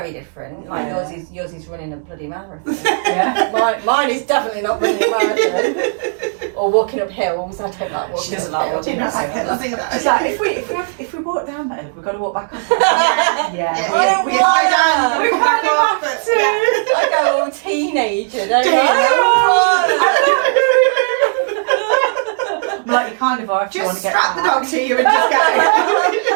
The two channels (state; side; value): silent; left; digital silence